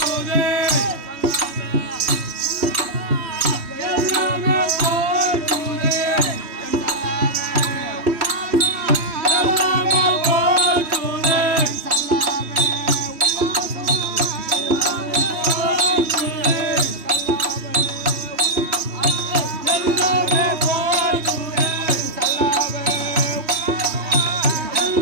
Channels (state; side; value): late; left; 3.1 ms